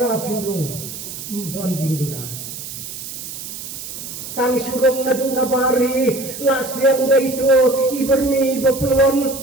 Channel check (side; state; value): right; noise; hiss, 10 dB below the sound